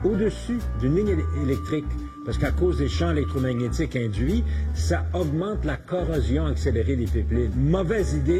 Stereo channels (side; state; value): both; identical; correlation 1.00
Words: au-dessus d'une ligne électrique. Parce qu'à cause des champs électromagnétiques induits, ça augmente la corrosion accélérée des pipelines. Mauvaise